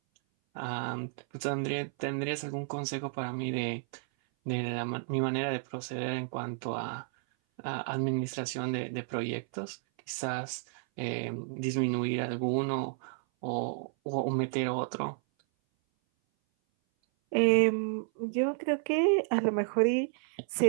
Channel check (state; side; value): silent; left; 56 dB below the other